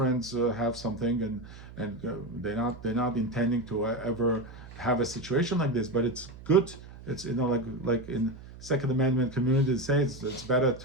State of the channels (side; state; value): right; noise; hum, 16 dB below the sound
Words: have something, and they're not intending to ever have a situation like this. But it's good. It's like in Second Amendment community say it's better